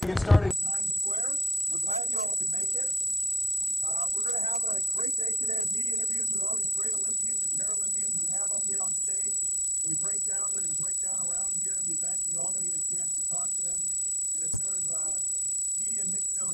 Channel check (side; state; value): both; normal; correlation 0.86